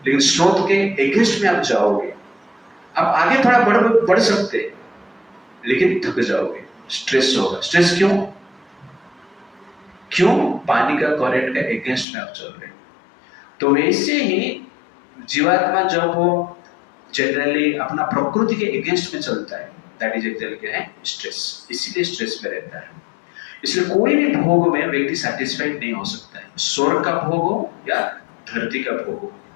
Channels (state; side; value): drops out; right; at 12.1 s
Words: लेकिन स्रोत के अगेंस्ट में आप जाओगे, आप आगे थोड़ा बढ़ सकते हैं, लेकिन थक जाओगे, स्ट्रेस होगा। स्ट्रेस क्यों? पानी का करंट का अगेंस्ट में आप चल रहे हैं। तो वैसे ही जीवात्मा जब वो जनरली अपना प्रकृति के अगेंस्ट में चलता है, दैट इज एक्चुअली क्या है? स्ट्रेस। इसीलिए स्ट्रेस में रहता है। इसलिए कोई भी भोग में व्यक्ति सैटिस्फाइड नहीं हो सकता है। स्वर्ग का भोग हो या धरती का भोग हो,